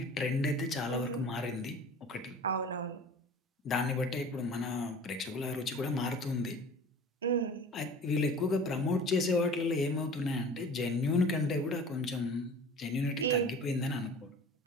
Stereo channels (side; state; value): both; normal; correlation 0.41